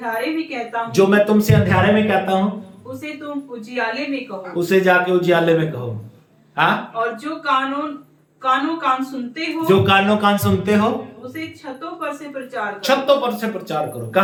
में कहता हूँ, जो मैं तुमसे अंधियारे में कहता हूँ, उसे तुम उजियाले में कहो, उसे जाके उजियाले में कहो। हाँ, और जो कानों कान सुनते हो, जो कानों कान सुनते हो, उसे छतों पर से प्रचार करो। छतों पर से प्रचार करो।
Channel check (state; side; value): identical; both; correlation 1.00